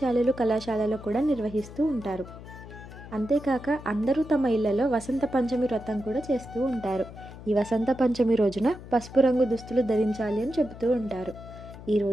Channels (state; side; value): noise; left; hum, 15 dB below the sound